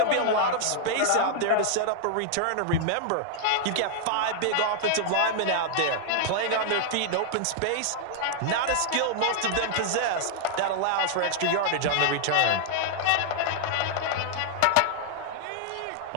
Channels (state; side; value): different; both; correlation 0.00